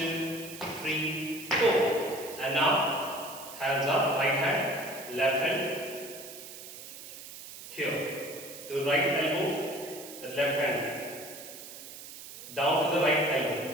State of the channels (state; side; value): noise; right; hiss, 13 dB below the sound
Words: 3, 4. And now hands up, right hand, left hand. Here, the right elbow, the left hand. Down to the right elbow.